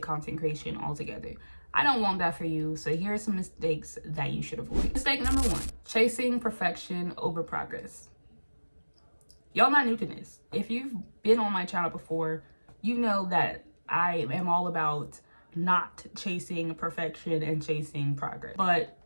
content creation altogether. I don't want that for you, so here are some mistakes that you should avoid. Mistake number 1, chasing perfection over progress. Y'all not new to this. If you've been on my channel before, you know that I am all about not chasing perfection and chasing progress. But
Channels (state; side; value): inverted; both; correlation -1.00